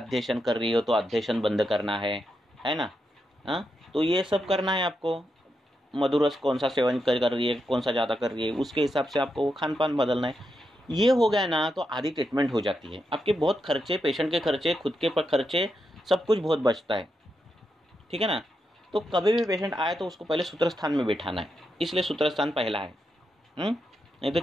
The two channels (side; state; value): both; normal; correlation 0.84